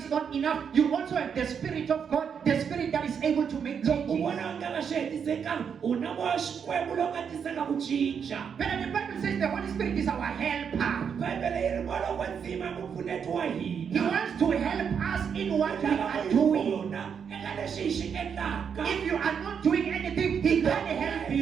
not enough, you also have the Spirit of God, the Spirit that is able to make loko u changes. vona nga nga swi hetisekanga u na moya xikwembu lowu nga tisaka ku cinca. But the Bible says the Holy Spirit is our helper. bibele yi ri moya wa ndzima mupfuneti wa He hina. wants to help us in what we lava are ku hi doing. pfuna eka leswi hi xi endlaka. If you are not doing anything, He can't help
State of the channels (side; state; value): left; quieter; 7.1 dB